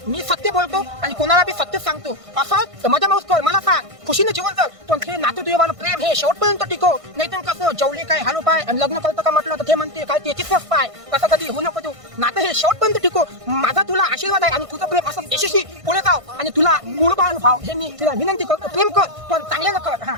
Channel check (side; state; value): left; late; 1.5 ms